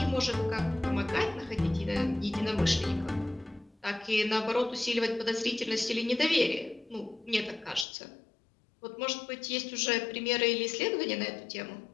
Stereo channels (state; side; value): drops out; right; at 7.9 s